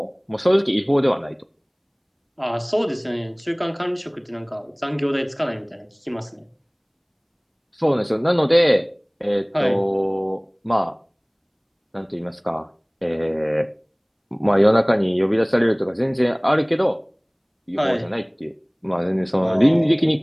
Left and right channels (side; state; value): both; identical; correlation 1.00